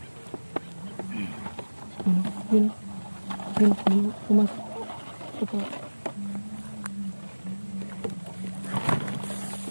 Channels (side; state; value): both; inverted; correlation -1.00